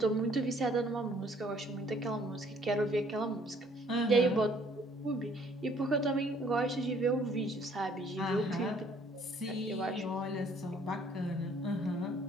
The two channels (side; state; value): both; normal; correlation 0.61